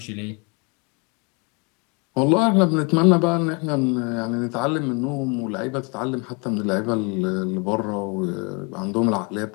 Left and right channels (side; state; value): right; quieter; 31.7 dB